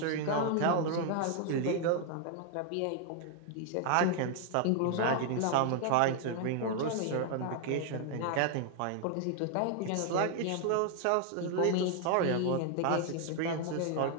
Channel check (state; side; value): different; both; correlation 0.00